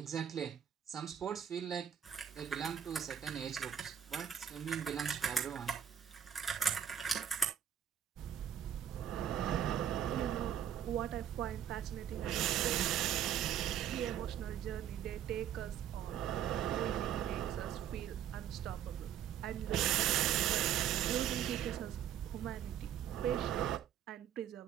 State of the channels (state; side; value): quieter; left; 9.4 dB